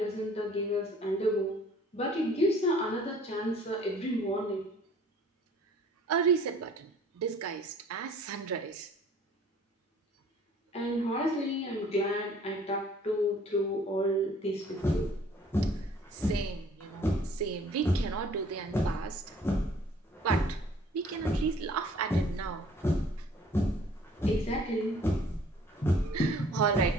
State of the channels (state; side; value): normal; both; correlation 0.54